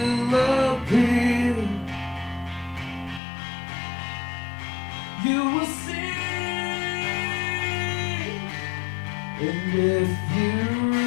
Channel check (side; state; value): right; drops out; at 3.2 s